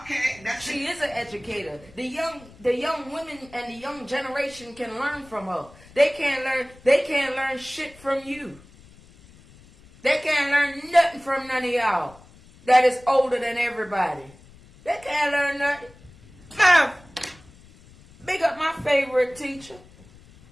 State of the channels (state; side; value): noise; left; rumble, 24 dB below the sound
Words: she is an educator. The young women and the young generation can learn from her. They can't learn shit from you. They can't learn nothing from none of y'all that is older than everybody. They can't learn nothing. Mom, big up my favorite teacher.